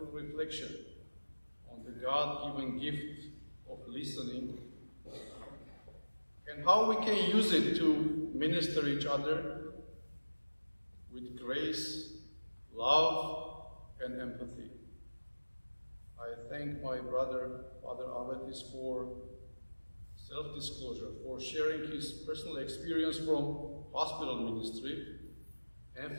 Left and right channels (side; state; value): both; inverted; correlation -1.00